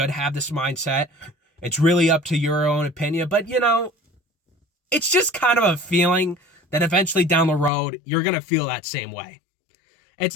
have this mindset. It's really up to your own opinion. But, you know, it's just kind of a feeling that eventually down the road, you're going to feel that same way. It's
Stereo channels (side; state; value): right; drops out; at 7.7 s